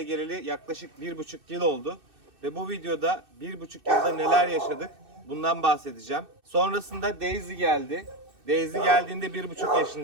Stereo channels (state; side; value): late; left; 2.6 ms